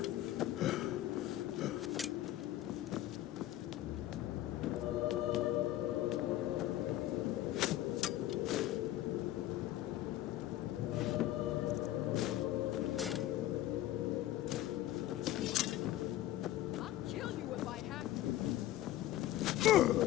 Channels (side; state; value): right; quieter; 14.1 dB